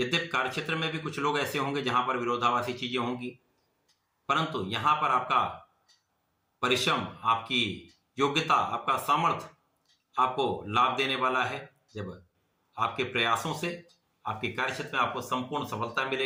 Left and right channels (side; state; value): both; identical; correlation 1.00